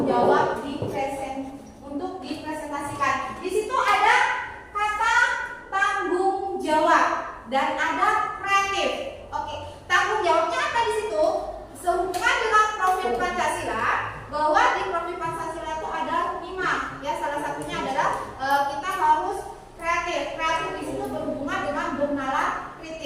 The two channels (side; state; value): both; identical; correlation 1.00